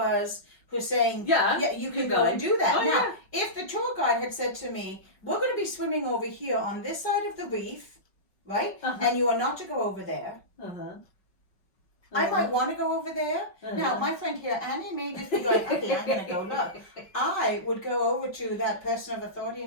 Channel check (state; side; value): late; right; 5.4 ms